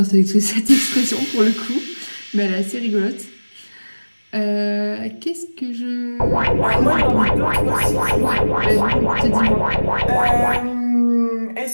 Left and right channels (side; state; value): both; inverted; correlation -1.00